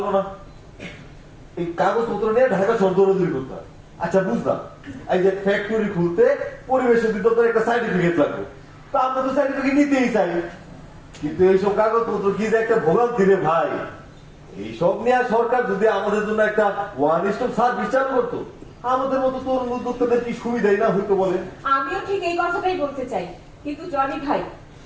না। এই কাগজপত্র নিয়ে ঢাকা শহর দৌড়াদৌড়ি করতে হয়। আচ্ছা বুঝলাম, এই যে ফ্যাক্টরি খুলতে পরিবেশ অধিদপ্তর একটা সার্টিফিকেট লাগবে, তো আমরা তো সার্টিফিকেট নিতেই চাই, কিন্তু এইসব কাগজপত্র কি যে একটা ভোগান্তি রে ভাই। এইসব নিয়ে সরকার যদি আমাদের জন্য একটা ওয়ান স্টপ সার্ভিস চালু করতো, আমাদের মতো তরুণ উদ্যোক্তাদের কি সুবিধাই না হইতো বলেন? আমিও ঠিক এই কথাটাই বলতে চাই, কিন্তু জনি ভাই,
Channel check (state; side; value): identical; both; correlation 1.00